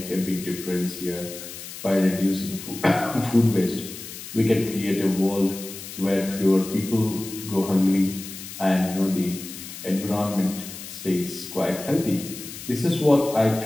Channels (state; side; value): noise; left; hiss, 12 dB below the sound